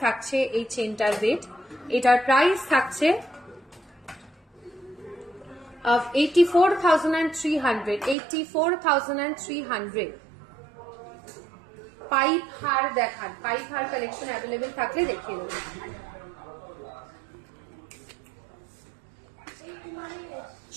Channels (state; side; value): drops out; left; at 8.2 s